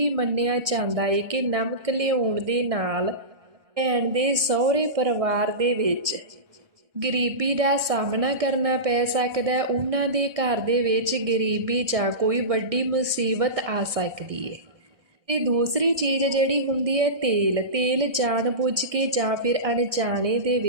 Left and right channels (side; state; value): left; late; 1.6 ms